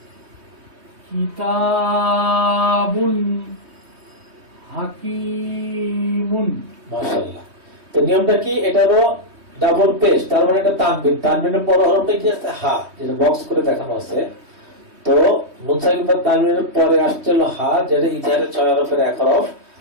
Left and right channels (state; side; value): late; left; 3.2 ms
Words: কিতাবুন হাকিমুন। মাশাআল্লাহ। তো নিয়মটা কি? এটা হলো ডাবল পেশ, তার মানে এটা তানবিন, তানবিনের পর হরফটা কি আছে? হা, যেটা বক্স করে দেখানো আছে। তো মুনসাকিন বা তানবিনের পরে আসছে হলো হা, যেটা ইজহারের 6 হরফের এক হরফ,